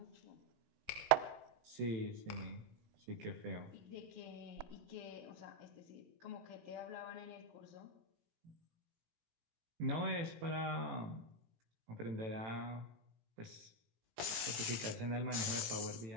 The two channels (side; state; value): left; late; 17 ms